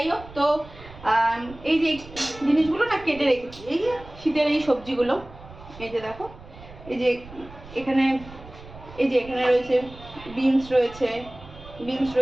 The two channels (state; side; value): noise; right; rumble, 18 dB below the sound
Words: হোক, তো এই যে জিনিসগুলো না কেটে রেখেছি, এই যে শীতের এই সবজিগুলো, এই যে দেখো, এই যে এখানে রয়েছে বিনস